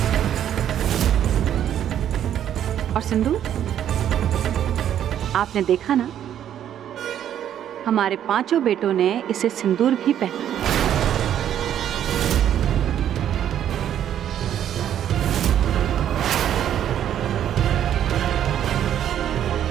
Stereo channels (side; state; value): left; quieter; 10.3 dB